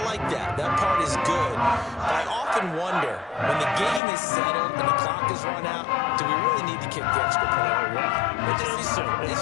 like that. That part is good. But I often wonder, when the game is settled and the clock is run out, do we really need to kick the extra point?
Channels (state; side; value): drops out; right; at 4.0 s